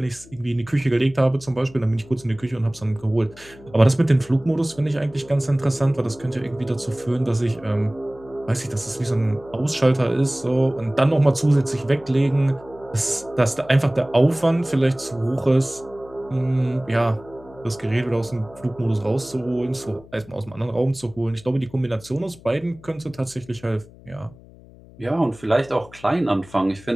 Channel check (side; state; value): left; noise; hum, 22 dB below the sound